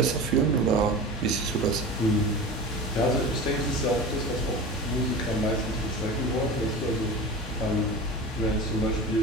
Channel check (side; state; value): both; normal; correlation 0.31